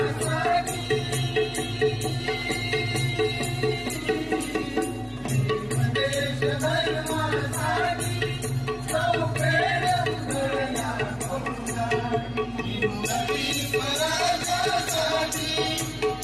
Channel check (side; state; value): both; identical; correlation 1.00